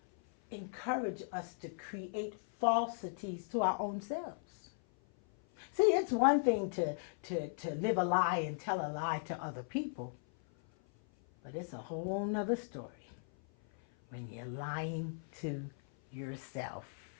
encourage us to create falsities to our own selves. See, it's one thing to live a lie and tell a lie to other people, but it's a whole nother story when you're lying to yourself.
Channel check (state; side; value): silent; right; 53 dB below the other